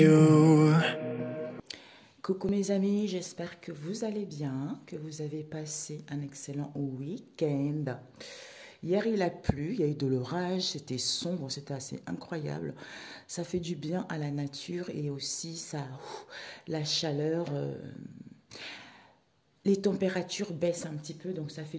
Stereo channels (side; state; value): both; identical; correlation 1.00